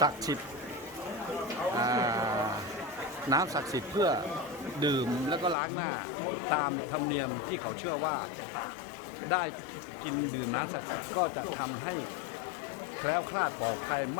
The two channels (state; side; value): drops out; right; at 5.6 s